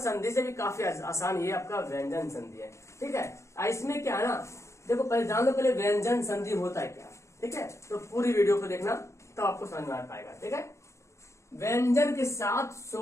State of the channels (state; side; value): late; right; 0.14 ms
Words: से भी काफी आसान ये आपका व्यंजन संधि है। ठीक है, इसमें क्या है ना, देखो पहले जान लो पहले व्यंजन संधि होता है क्या। ठीक है, तो पूरी वीडियो को देखना तो आपको समझ में आ पाएगा। ठीक है, व्यंजन के साथ